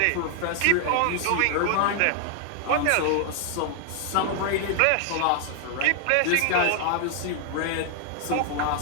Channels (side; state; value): both; different; correlation 0.00